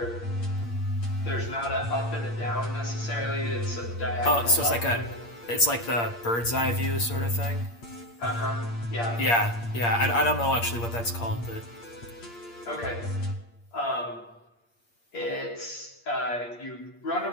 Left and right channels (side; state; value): right; late; 8.6 ms